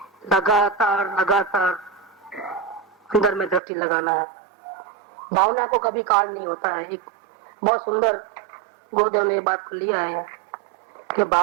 लगातार लगातार अंदर में दृष्टि लगाना है। भावना को कभी काल नहीं होता है। एक बहुत सुंदर गुरुदेव ने बात लिया है कि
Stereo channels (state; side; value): drops out; left; at 3.6 s